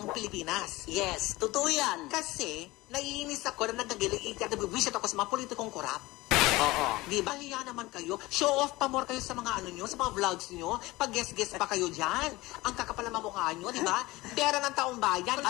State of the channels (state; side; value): quieter; right; 20.2 dB